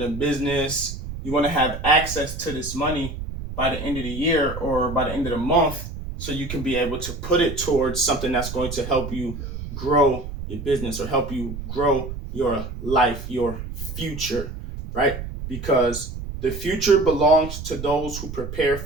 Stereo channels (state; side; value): noise; right; rumble, 8 dB below the sound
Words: a business. You want to have access to this money by the end of the year or by the end of the month so you can be able to put it towards something that's going to help you grow your business or help you grow your life, your future, right? Because the future belongs to those who prepare